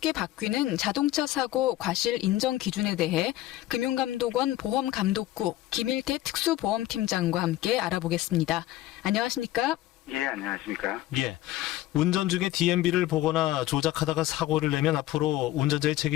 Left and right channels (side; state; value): right; quieter; 15.3 dB